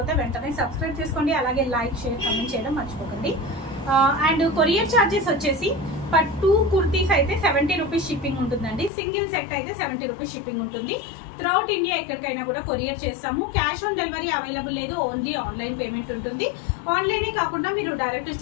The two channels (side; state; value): right; drops out; at 8.9 s